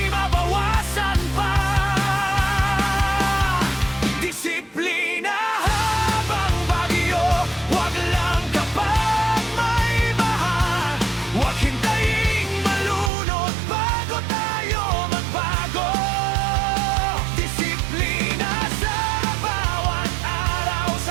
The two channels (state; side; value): drops out; left; at 13.1 s